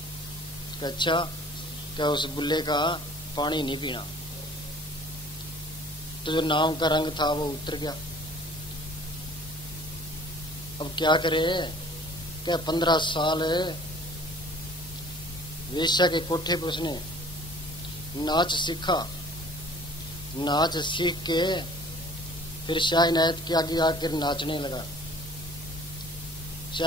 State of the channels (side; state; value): both; normal; correlation 0.51